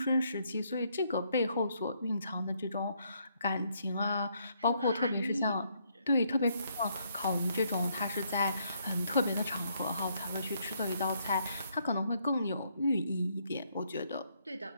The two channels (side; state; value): both; inverted; correlation -0.72